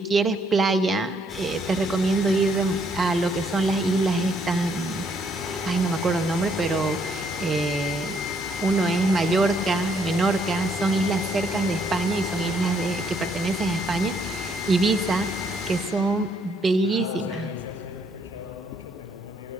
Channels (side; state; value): both; normal; correlation 0.70